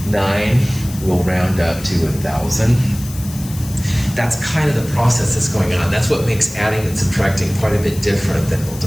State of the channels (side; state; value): left; noise; hiss, 15 dB below the sound